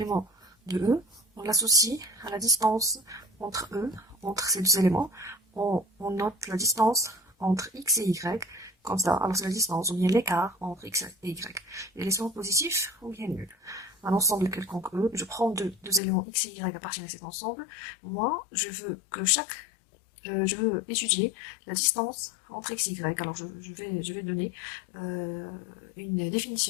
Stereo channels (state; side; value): drops out; right; at 16.0 s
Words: de E, on l'associe à la distance entre E, entre ces deux éléments. On note la distance entre X et Y, comme ça. Alors c'est la distance, ou bien l'écart entre X et Y. Et les sens positifs ou bien nuls. Un ensemble quelconque E, je prends deux éléments X et Y appartiennent à cet ensemble. Moi, je veux étudier la distance entre x et y. Alors je vais donner une